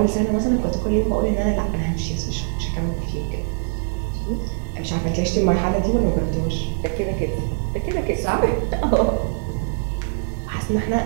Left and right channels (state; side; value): silent; left; digital silence